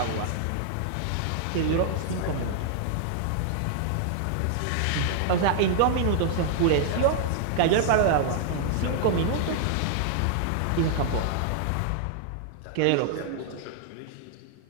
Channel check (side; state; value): both; different; correlation -0.01